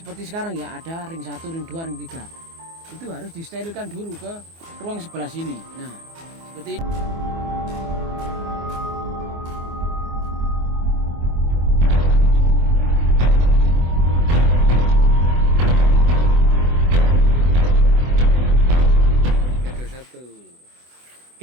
sekarang ya, ada ring 1, ring 2, ring 3. Itu harus disterilkan dulu ke ruang sebelah sini. Nah, seperti ini.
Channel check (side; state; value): left; late; 24 ms